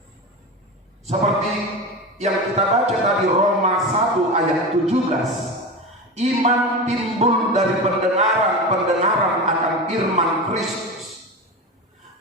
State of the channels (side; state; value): both; normal; correlation 0.25